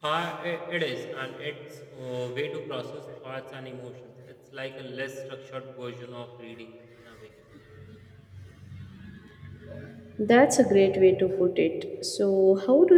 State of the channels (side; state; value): both; identical; correlation 1.00